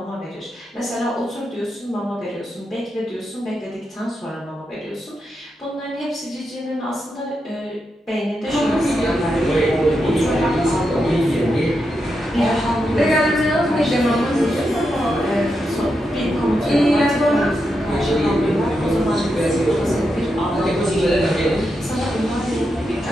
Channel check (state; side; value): normal; both; correlation 0.85